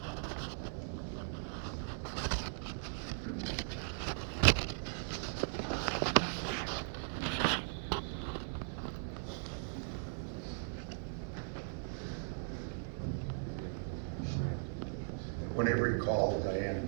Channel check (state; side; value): silent; left; digital silence